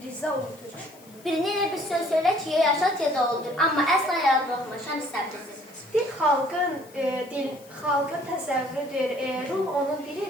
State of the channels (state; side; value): noise; left; hiss, 25 dB below the sound